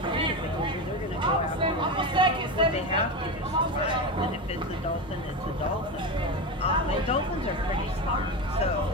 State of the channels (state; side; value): normal; both; correlation 0.19